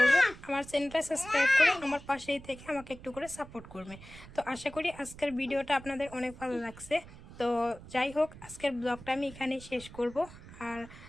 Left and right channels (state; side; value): noise; right; rumble, 17 dB below the sound